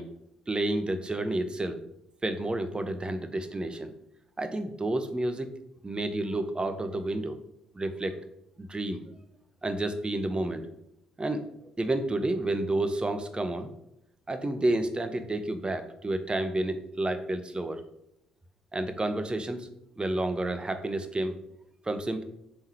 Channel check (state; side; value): normal; both; correlation 0.89